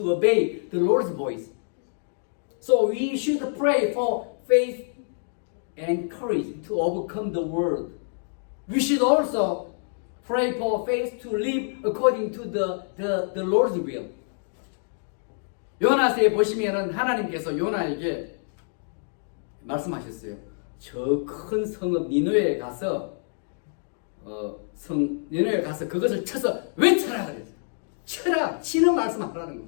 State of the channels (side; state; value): right; silent; digital silence